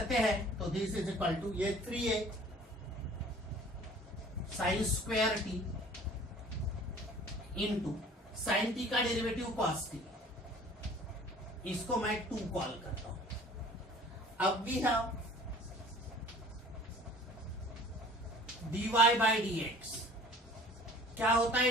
हैं तो दिस इज इक्वल टू ये 3a sine square t into sine t का डेरिवेटिव कॉस टी, इसको मैं 2 कॉल करता हूं। अब we have dy by dx, क्या होता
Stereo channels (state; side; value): normal; both; correlation 0.49